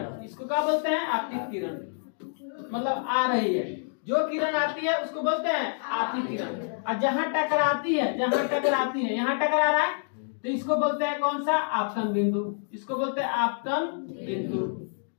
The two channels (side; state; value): right; silent; digital silence